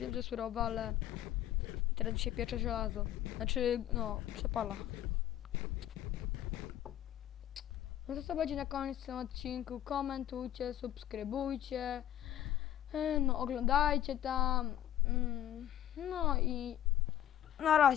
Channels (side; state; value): right; quieter; 12.0 dB